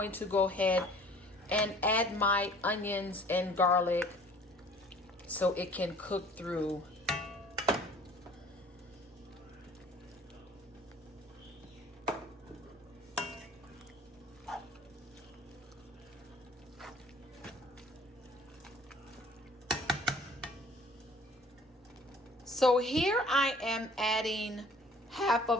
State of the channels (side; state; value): both; normal; correlation 0.51